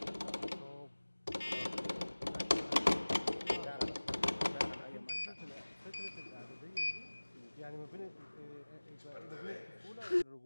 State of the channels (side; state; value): both; inverted; correlation -1.00